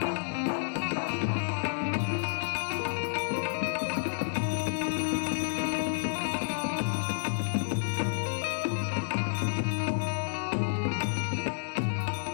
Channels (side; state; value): right; silent; digital silence